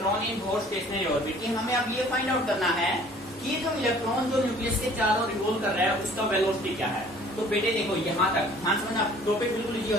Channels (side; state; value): both; normal; correlation 0.53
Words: in both stationery orbit. कि हमें अब ये फाइंड आउट करना है कि जो इलेक्ट्रॉन जो न्यूक्लियस के चारों रिवॉल्व कर रहा है उसका वेलोसिटी क्या है। तो बेटे देखो यहाँ तक ध्यान समझना, टॉपिक बिल्कुल इजी हो